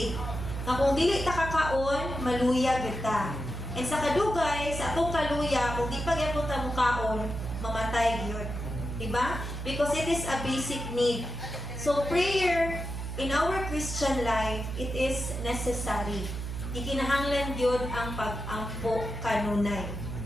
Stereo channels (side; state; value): right; noise; hum, 6 dB below the sound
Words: Nga kung dili ta kakaon, maluya gyud ta. And sa kadugay, sa atong kaluya, kung di pa gyapon ta mukaon, mamatay gyud. Diba? Because it is a basic need. So prayer in our Christian life, it is necessary. Ikinahanglan gyud ang pag-ampo kanunay.